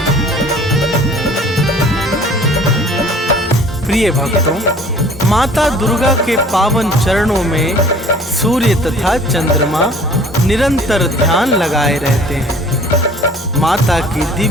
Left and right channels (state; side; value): normal; both; correlation 0.51